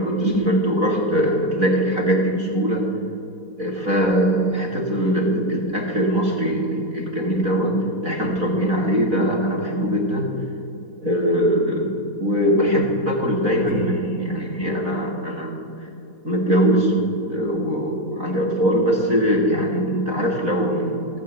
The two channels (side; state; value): left; late; 4.0 ms